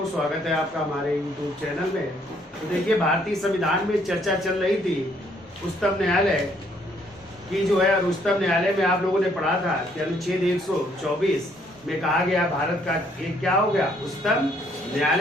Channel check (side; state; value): both; normal; correlation 0.67